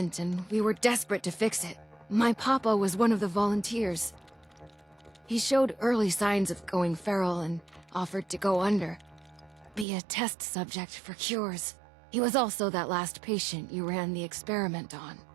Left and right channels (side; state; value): left; drops out; at 9.9 s